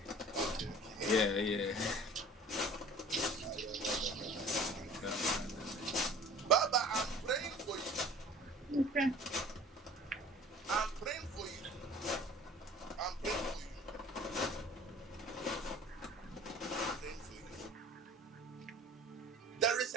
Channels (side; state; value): both; normal; correlation 0.45